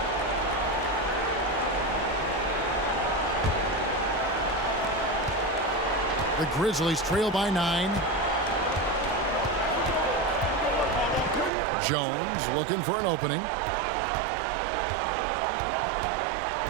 The Grizzlies trail by 9. Jones looking for an opening.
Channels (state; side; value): drops out; left; at 11.5 s